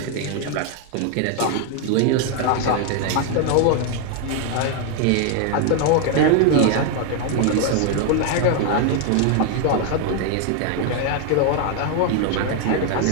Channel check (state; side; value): different; both; correlation 0.01